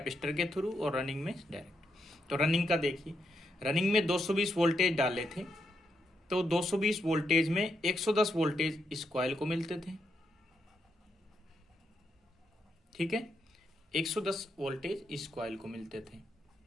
के थ्रू और रनिंग में डायरेक्ट। तो रनिंग का देखिए, रनिंग में 220 वोल्टेज डाले थे, तो 220 वोल्टेज में 110 वोल्टेज इस कॉइल को मिलते थे। ठीक है, 110 वोल्टेज इस कॉइल को मिलते थे।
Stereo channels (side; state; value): both; normal; correlation 0.81